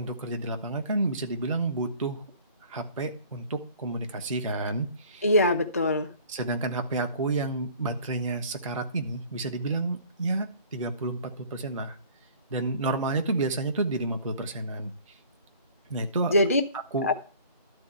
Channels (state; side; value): inverted; both; correlation -0.50